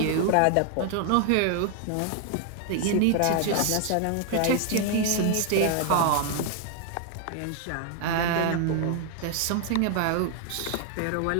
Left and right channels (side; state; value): both; different; correlation 0.00